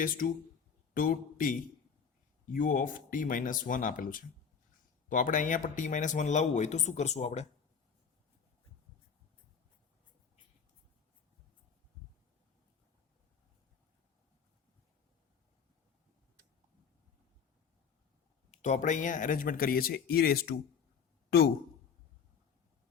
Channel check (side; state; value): right; quieter; 6.6 dB